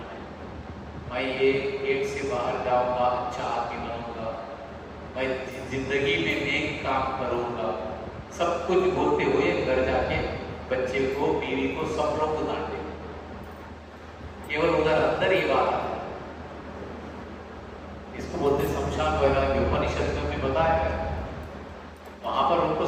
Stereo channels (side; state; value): both; identical; correlation 1.00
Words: मैं ये गेट से बाहर जाऊंगा, अच्छा आदमी बनूंगा, मैं जिंदगी में नेक काम करूंगा। सब कुछ बोलते हुए घर जाके बच्चे को, बीवी को, सब लोग को डांटे। केवल उधर अंदर ही बात है। इसको बोलते शमशान वैराग्य। उपनिषद में बताया है, वहां पर उनको